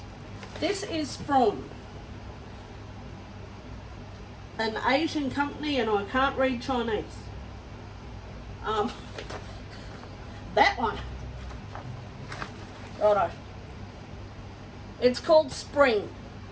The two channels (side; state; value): both; identical; correlation 1.00